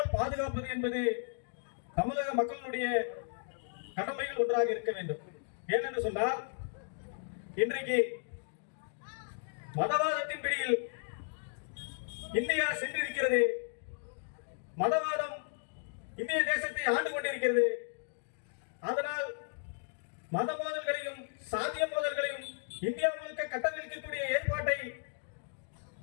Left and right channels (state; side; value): silent; right; digital silence